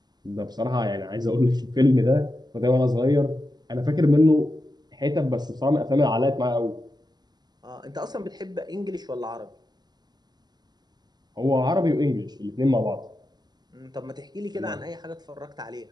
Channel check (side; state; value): left; late; 0.20 ms